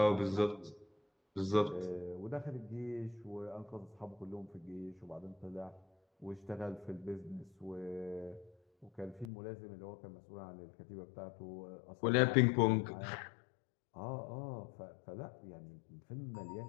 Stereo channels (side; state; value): right; drops out; at 9.3 s